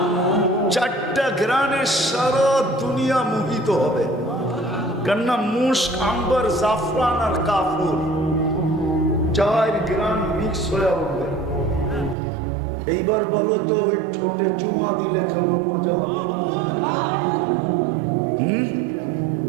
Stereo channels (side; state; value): left; drops out; at 12.2 s